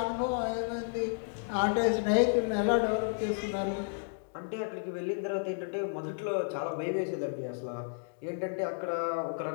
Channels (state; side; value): silent; right; digital silence